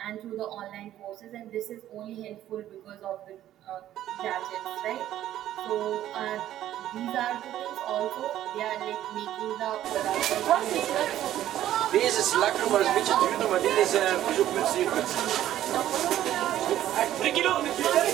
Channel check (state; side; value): quieter; left; 12.5 dB